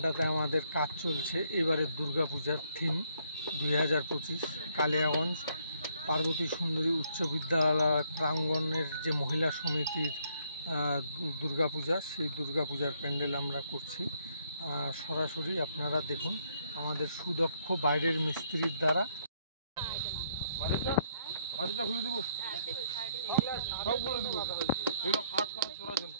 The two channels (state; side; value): inverted; both; correlation -0.70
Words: আমাদের কাজ চলছে এবারে দুর্গাপূজার থিম 2025 কালিয়াগঞ্জ পার্বতী সুন্দরী উচ্চ বিদ্যালয় প্রাঙ্গণের যে মহিলা সমিতির দুর্গাপূজা, সেই দুর্গাপূজার প্যান্ডেল আমরা করছি। সরাসরি আপনারা দেখুন আমাদের সুদক্ষ বাইরের মিস্ত্রির দ্বারা। খুলে দেবো, সব বলে দেবো, এগুলো কাজ করার তোলার জন্য।